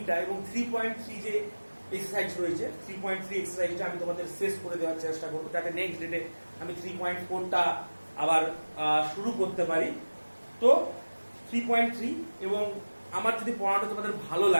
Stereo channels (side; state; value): both; inverted; correlation -1.00